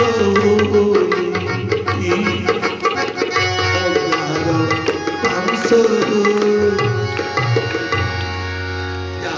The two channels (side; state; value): both; identical; correlation 1.00